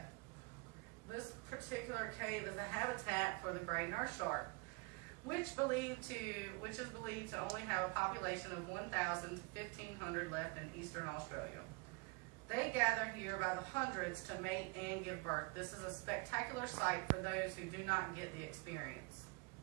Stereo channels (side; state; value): left; quieter; 29.3 dB